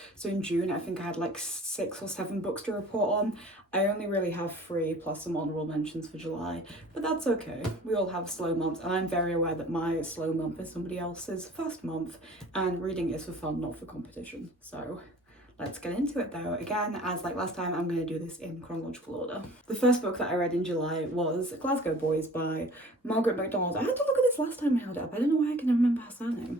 So in June, I think I had like 6 or 7 books to report on. I only really have 3 plus some honourable mentions for July, but that's okay. We all have slow months, and I'm very aware that my slow month is somebody else's first month, and reading is for fun, not for competition. So let's get into it though. Again, as like last time, I'm going to do this in chronological order. The first book that I read in July was Glasgow Boys by Margaret MacDonald. I had to look at this last time I held it up. I don't know why I can remember her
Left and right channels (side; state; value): both; normal; correlation 0.47